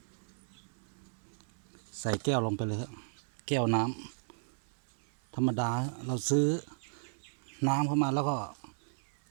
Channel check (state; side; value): silent; left; digital silence